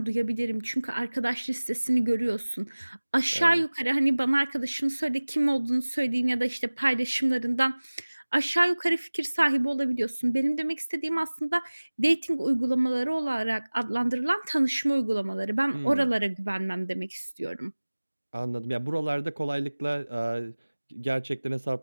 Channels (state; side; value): inverted; both; correlation -1.00